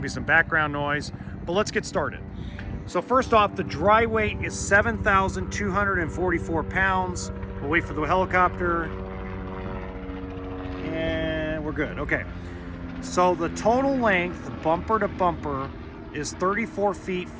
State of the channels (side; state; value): both; identical; correlation 1.00